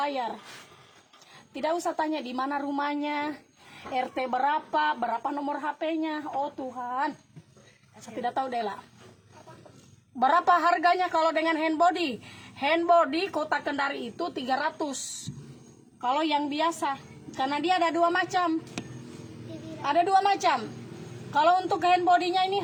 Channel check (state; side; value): identical; both; correlation 1.00